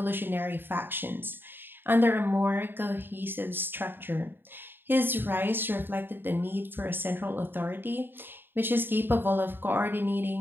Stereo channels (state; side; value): late; left; 0.098 ms